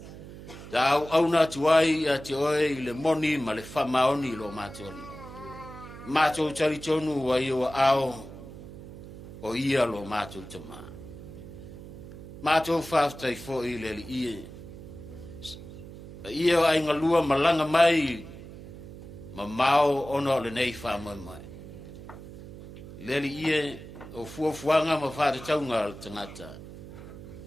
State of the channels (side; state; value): right; noise; hum, 14 dB below the sound